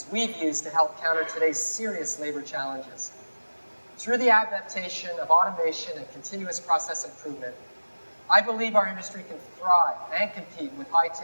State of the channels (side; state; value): both; inverted; correlation -1.00